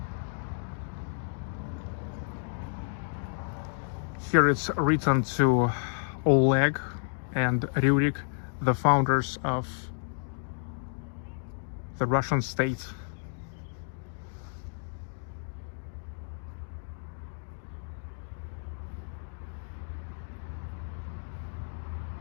Here it's written to Oleg and Rurik, the founders of the Russian state.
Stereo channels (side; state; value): right; silent; digital silence